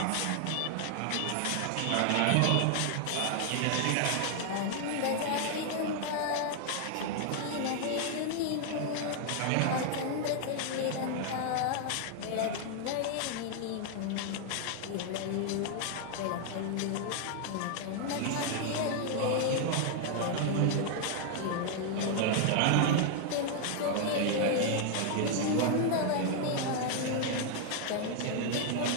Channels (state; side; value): different; both; correlation 0.00